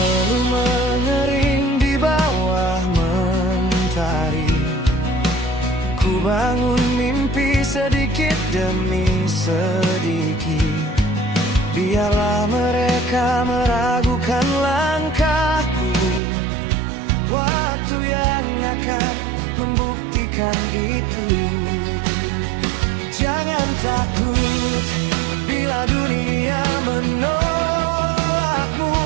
mengering di bawah mentari, ku bangun mimpi sedikit demi sedikit. Biarlah mereka meragukan langkahku, waktu yang akan membuktikan itu. Jangan takut bila dunia menolakmu.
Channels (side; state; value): left; drops out; at 16.2 s